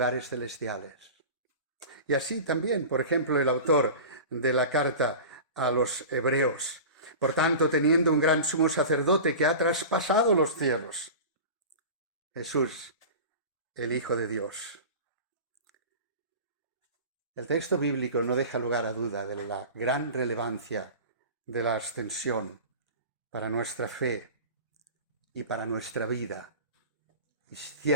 celestiales. Y así también, por ejemplo, el autor de la carta a los Hebreos. Por tanto, teniendo un gran sumo sacerdote que ha traspasado los cielos, Jesús, el Hijo de Dios. El texto bíblico no deja lugar a duda de la gran relevancia de la ascensión para nuestra fe y para nuestra vida, y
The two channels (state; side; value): inverted; both; correlation -0.34